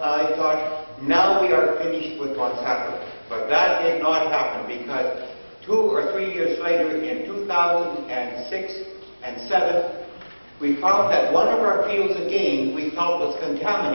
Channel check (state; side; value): inverted; both; correlation -1.00